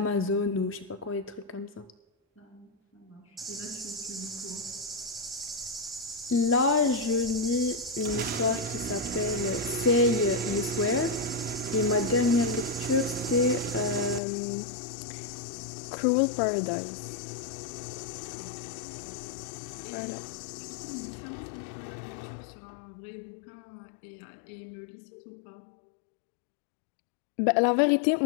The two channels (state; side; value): drops out; right; at 14.2 s